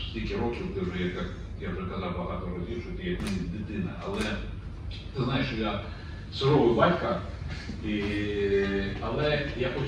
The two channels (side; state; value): both; identical; correlation 1.00